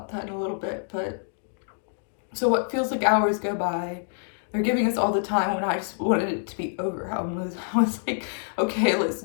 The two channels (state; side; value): silent; right; digital silence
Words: that in a little bit. But so what feels like hours go by. They're giving us all the time when I just wanted it to be over. I was like, okay, let's